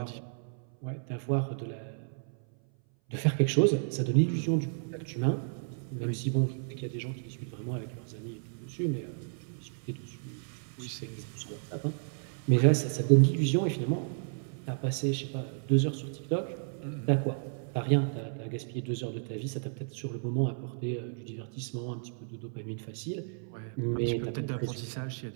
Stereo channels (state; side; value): silent; left; 56 dB below the other